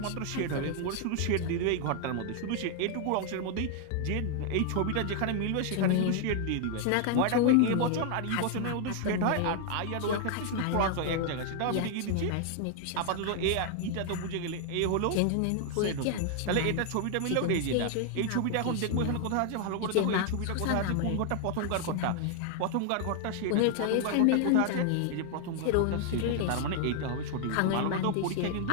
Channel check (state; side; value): different; both; correlation 0.00